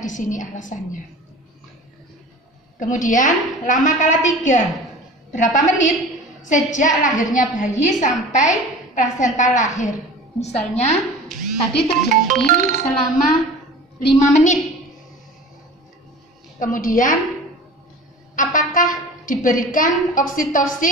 di sini alasannya. Kemudian lama kala 3. Berapa menit sejak lahirnya bayi sampai plasenta lahir? Misalnya tadi terjadi selama 5 menit. Kemudian apakah diberikan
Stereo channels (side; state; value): both; normal; correlation 0.39